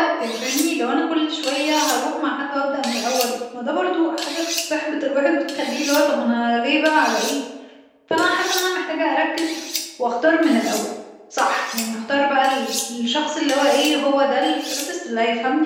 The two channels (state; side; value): identical; both; correlation 1.00